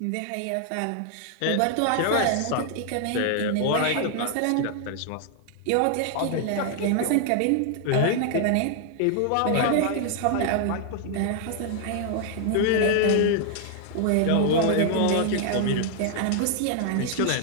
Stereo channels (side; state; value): both; different; correlation 0.00